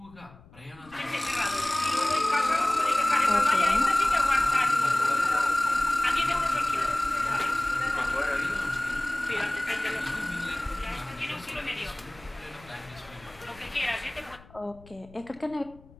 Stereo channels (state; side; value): noise; left; rumble, 24 dB below the sound